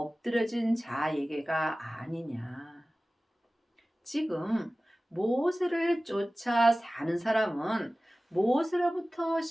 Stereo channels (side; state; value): both; normal; correlation 0.97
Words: 자에게가 아니냐? 지금 모세를 쫓아 사는 사람은 모세로부터